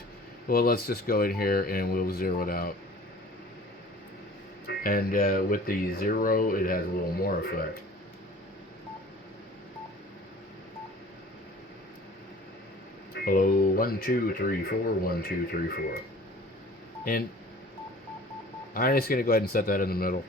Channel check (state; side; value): normal; both; correlation 0.46